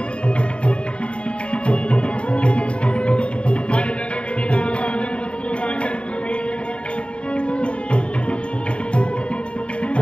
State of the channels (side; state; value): right; late; 0.057 ms